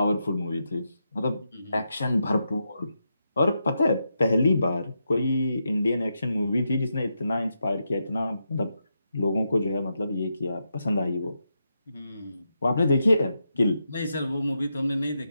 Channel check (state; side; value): inverted; both; correlation -0.85